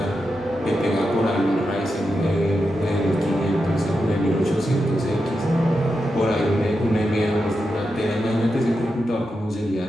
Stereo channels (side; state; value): both; normal; correlation 0.88